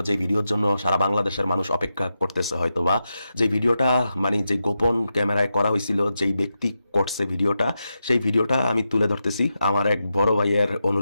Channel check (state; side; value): inverted; both; correlation -0.89